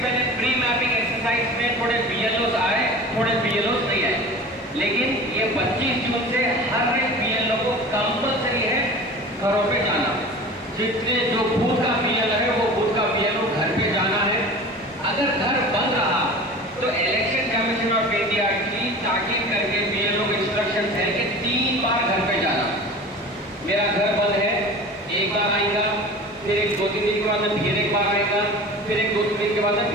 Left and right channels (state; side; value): normal; both; correlation 0.37